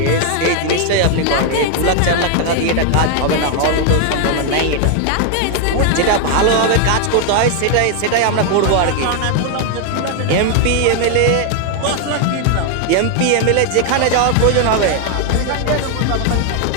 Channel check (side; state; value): both; different; correlation 0.00